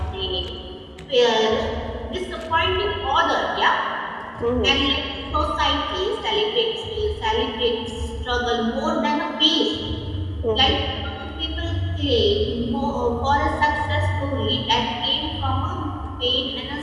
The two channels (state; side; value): identical; both; correlation 1.00